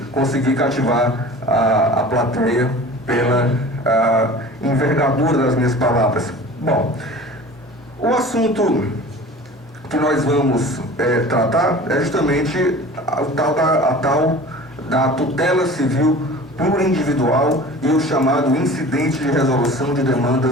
conseguir cativar a plateia pela envergadura das minhas palavras. Bom, o assunto que nós vamos tratar é justamente a tal da tutela civil plurindividual e o chamado incidente de resolução de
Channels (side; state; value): both; normal; correlation 0.41